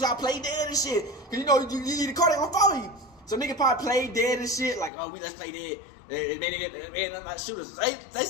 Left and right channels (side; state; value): right; drops out; at 4.9 s